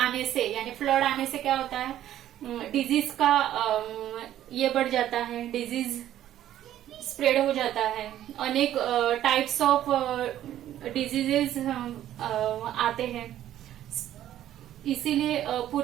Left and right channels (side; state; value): left; quieter; 12.2 dB